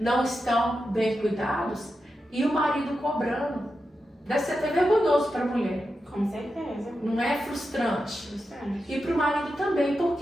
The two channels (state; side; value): normal; both; correlation 0.89